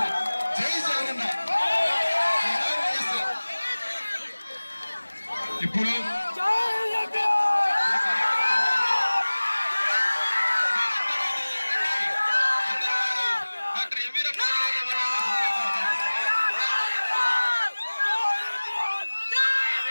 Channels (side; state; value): both; inverted; correlation -1.00